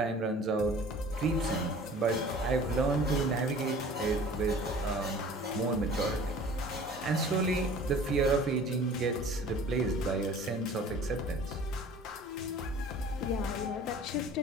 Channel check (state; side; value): normal; both; correlation 0.46